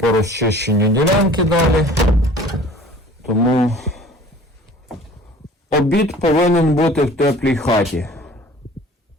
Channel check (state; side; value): normal; both; correlation 0.48